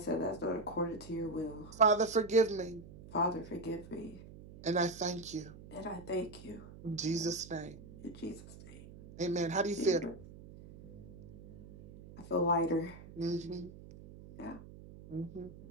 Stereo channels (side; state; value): right; noise; hum, 17 dB below the sound